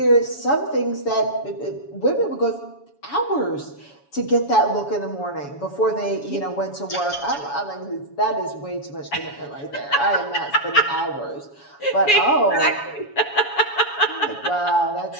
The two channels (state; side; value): late; right; 7.1 ms